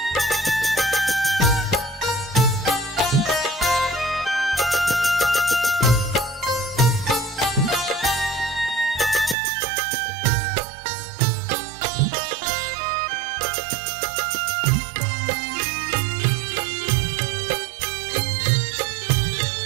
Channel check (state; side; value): drops out; left; at 9.3 s